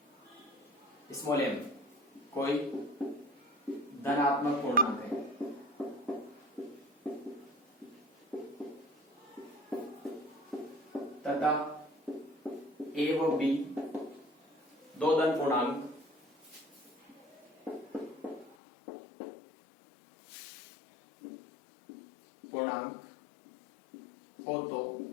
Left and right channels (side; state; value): right; drops out; at 18.6 s